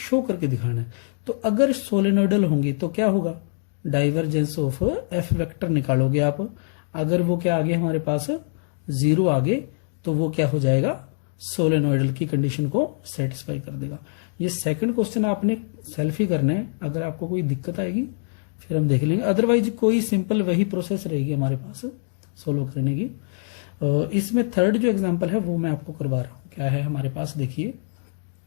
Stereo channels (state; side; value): silent; right; digital silence